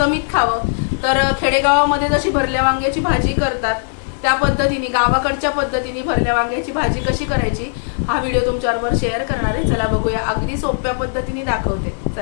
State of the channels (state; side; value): silent; right; digital silence